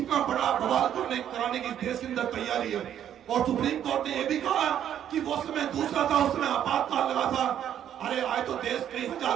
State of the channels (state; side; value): quieter; left; 10.2 dB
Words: बड़ा बवाल कराने की देश के अंदर तैयारी है। और सुप्रीम कोर्ट ने यह भी कहा कि वो समय दूसरा था, उस समय आपातकाल लगा था। अरे आज तो देश कई